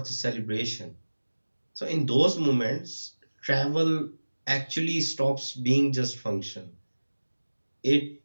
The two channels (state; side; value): inverted; both; correlation -1.00